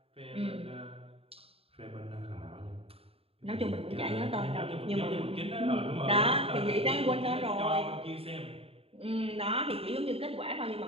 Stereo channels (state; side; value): late; left; 0.28 ms